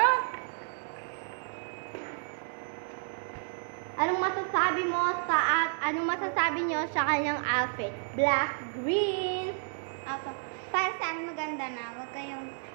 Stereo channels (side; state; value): left; silent; digital silence